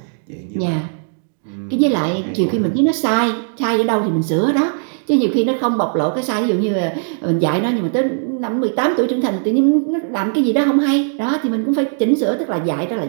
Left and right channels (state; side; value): silent; left; digital silence